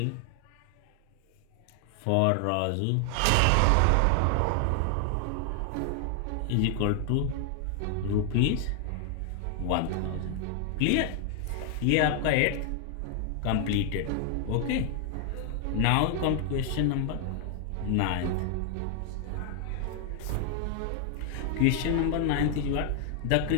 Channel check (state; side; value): different; both; correlation 0.00